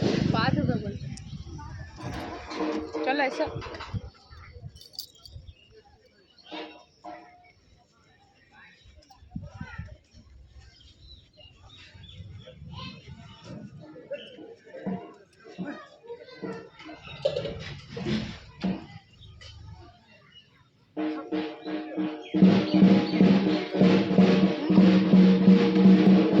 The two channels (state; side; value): identical; both; correlation 1.00